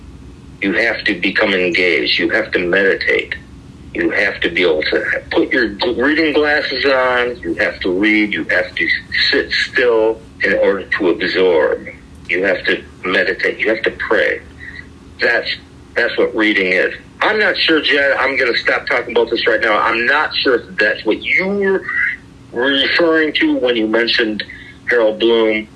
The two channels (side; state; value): both; identical; correlation 1.00